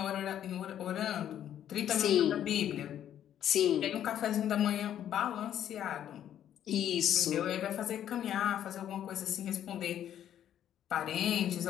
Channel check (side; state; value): right; quieter; 10.6 dB